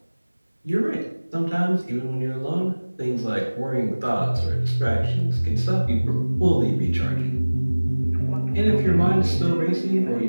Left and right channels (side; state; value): both; inverted; correlation -1.00